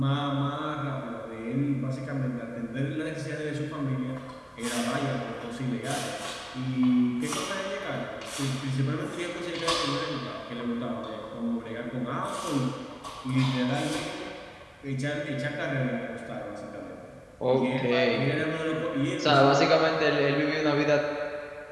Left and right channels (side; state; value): both; identical; correlation 1.00